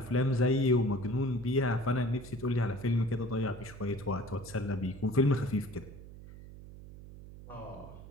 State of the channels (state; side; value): noise; right; hum, 15 dB below the sound